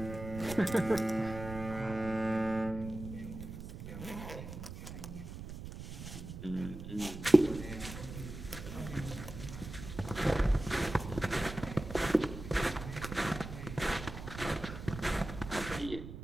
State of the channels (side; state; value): right; noise; rumble, 10 dB below the sound